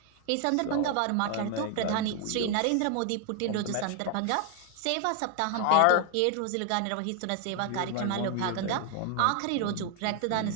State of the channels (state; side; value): different; both; correlation 0.00